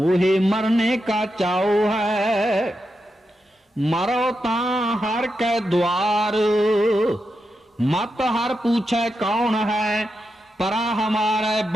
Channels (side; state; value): both; normal; correlation 0.87